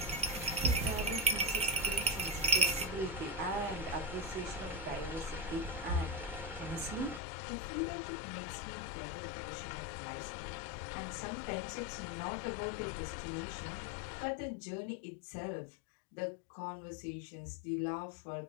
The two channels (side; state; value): right; drops out; at 7.2 s